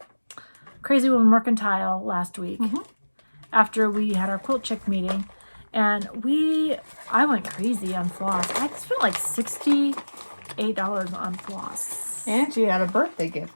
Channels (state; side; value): inverted; both; correlation -1.00